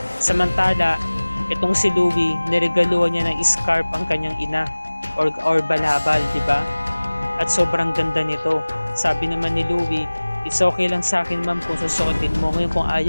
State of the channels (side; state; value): both; inverted; correlation -1.00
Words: Samantala, itong si Louie, niregaluhan niya ng scarf ang kanyang ina or balabal, 'di ba? At sobrang ganda nito. Sabi naman ni Louie, it's okay lang sa akin ma'am kung susuotin mo. Ngayon kung